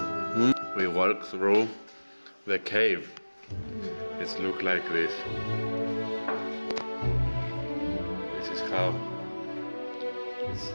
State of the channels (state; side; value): inverted; both; correlation -1.00